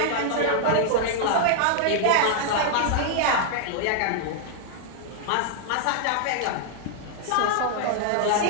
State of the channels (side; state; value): both; different; correlation 0.00